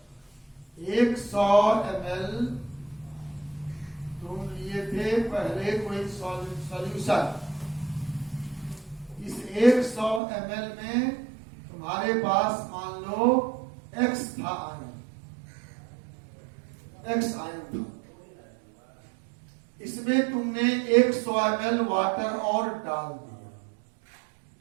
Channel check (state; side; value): drops out; left; at 10.2 s